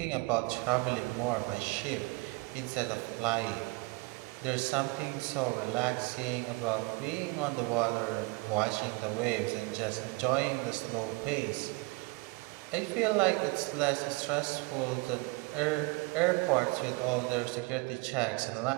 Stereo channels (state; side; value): quieter; left; 26.4 dB